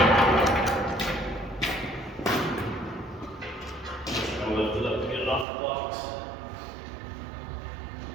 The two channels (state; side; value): drops out; left; at 5.5 s